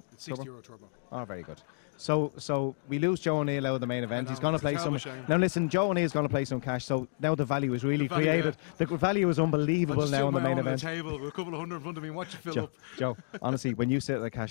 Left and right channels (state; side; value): silent; right; digital silence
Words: It's €60 turbo. Oh, very good. So we lose Joe O'Neill out of the main event. know, He's going to it's a play terrible some. shame. Now listen, Joe O'Neill's going to play some cash. So now the value is really The value, created. The value is unbelievable now in the main on event. the table with a couple of hundred in front of me. Watch it fill up. Joe, honestly, when you sit at the